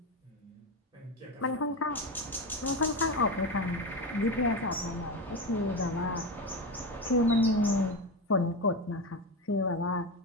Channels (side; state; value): both; normal; correlation 0.19